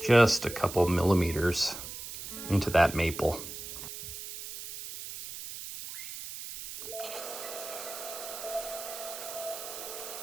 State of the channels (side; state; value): right; noise; hiss, 10 dB below the sound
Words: a couple millimeters into that maple.